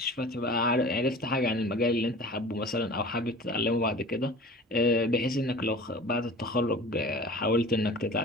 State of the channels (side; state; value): both; normal; correlation 0.40